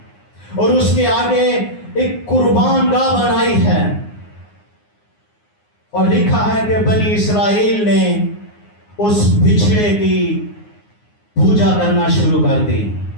और उसके आगे एक कुर्बान गाह बनाई है। और लिखा है कि बनी इसराइल ने उस बिछड़े की पूजा करना शुरू कर दी।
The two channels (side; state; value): right; late; 9.6 ms